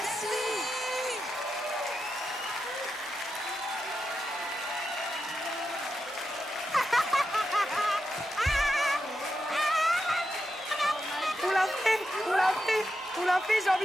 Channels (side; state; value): both; normal; correlation 0.87